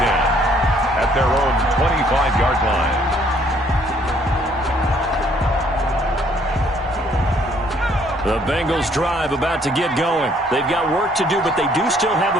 10 at their own 25-yard line. The Bengals drive about to get going. They've got work to do, but they do still have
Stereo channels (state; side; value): normal; both; correlation 0.64